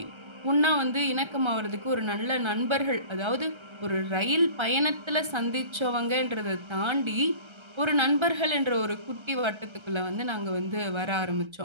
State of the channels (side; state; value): left; late; 1.3 ms